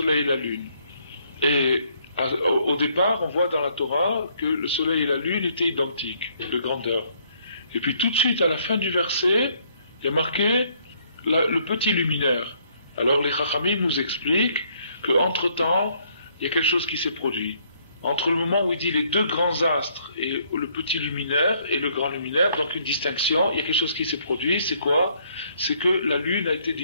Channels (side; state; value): both; inverted; correlation -0.67